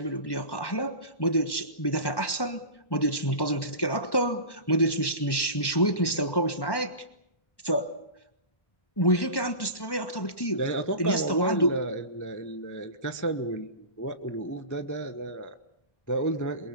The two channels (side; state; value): right; late; 1.1 ms